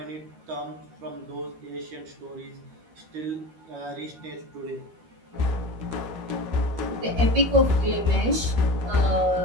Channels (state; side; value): late; left; 13 ms